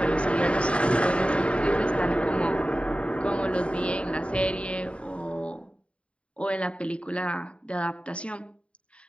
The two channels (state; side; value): late; right; 0.060 ms